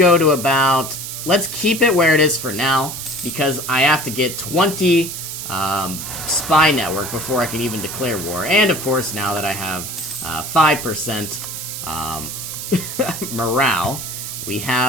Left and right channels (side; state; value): right; noise; hiss, 7 dB below the sound